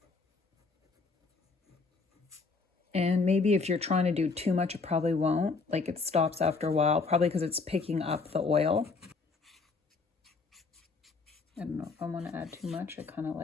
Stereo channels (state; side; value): quieter; right; 4.2 dB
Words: And maybe if you're trying to do too much, it probably won't. Like it stops after a while, probably because it's picking up the oil. I don't know if I want to add too much. I kind of